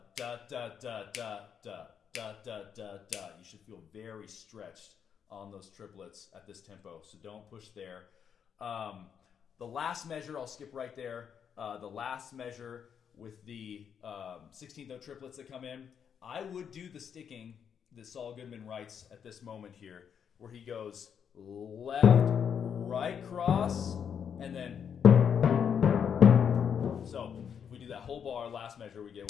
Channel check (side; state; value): right; quieter; 7.7 dB